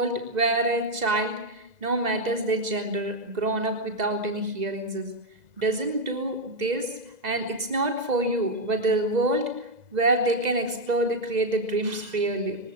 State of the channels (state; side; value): late; left; 2.0 ms